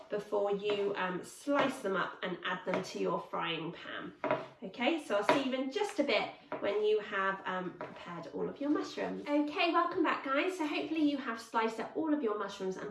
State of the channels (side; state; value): both; identical; correlation 1.00